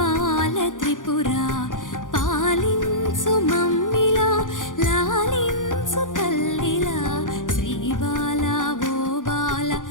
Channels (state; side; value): late; right; 0.88 ms